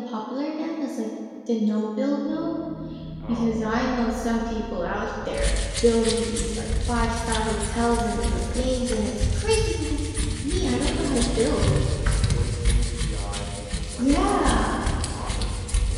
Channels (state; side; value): identical; both; correlation 1.00